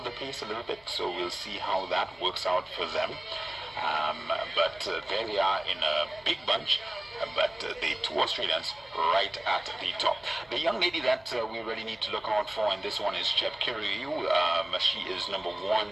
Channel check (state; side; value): noise; left; hum, 30 dB below the sound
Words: pace a little bit, so we'll see how that works out for them. But there they are in a big bunch, but the two Australians right at the top. The young lady that we really need to look out for in this one is Chepkirui. She is number